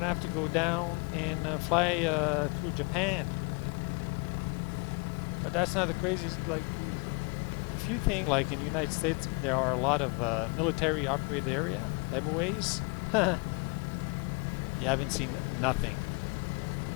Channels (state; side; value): quieter; right; 30.3 dB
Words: to have to go down and fly through Japan. But that's not the craziest. Like, if you think like in the United States there are a lot of military operated area, MOAs, You haven't seen nothing.